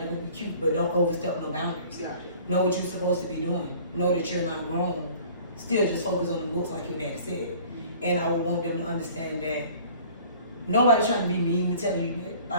can be cute, but don't overstep no boundaries. Yeah. Know what you're supposed to be doing. Know that you're not grown. Still just focus on the books like your daddy said. And I would want them to understand that nobody's trying to be mean to tell you that.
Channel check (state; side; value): inverted; both; correlation -0.50